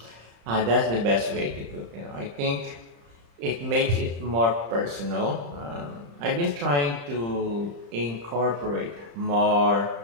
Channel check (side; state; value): left; late; 35 ms